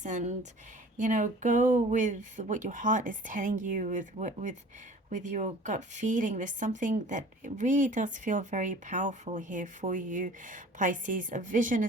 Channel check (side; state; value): both; normal; correlation 0.45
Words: and, you know, go with what your heart is telling you, with your gut feeling. There's something that really does feel very powerful here for you, Pisces. A vision